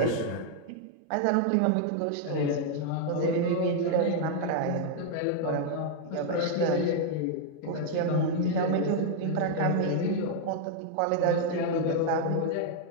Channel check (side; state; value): both; different; correlation 0.00